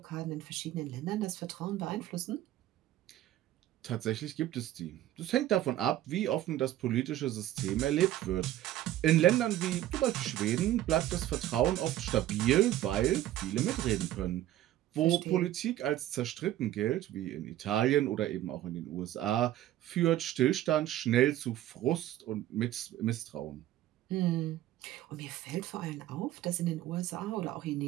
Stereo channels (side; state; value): left; quieter; 13.5 dB